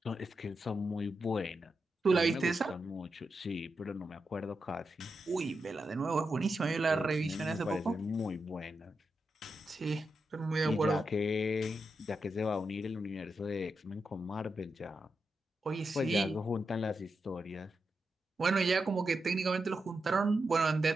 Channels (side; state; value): both; normal; correlation 0.87